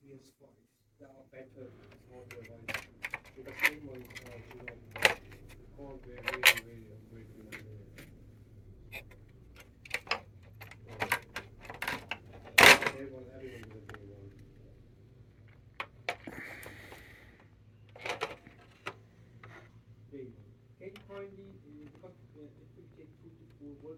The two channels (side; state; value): both; identical; correlation 1.00